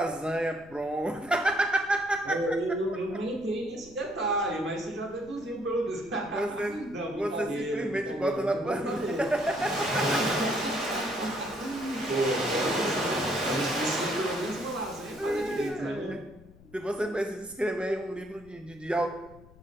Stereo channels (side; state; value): left; noise; rumble, 23 dB below the sound